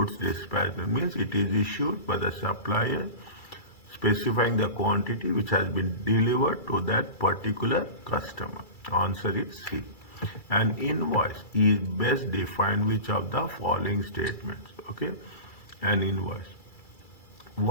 dispatch note? Means it is issued by the supplier specifying the quantity which has been delivered to that particular customer. Answer is C. An invoice is best defined which of the following statements? Okay, an invoice.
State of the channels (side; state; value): right; late; 2.3 ms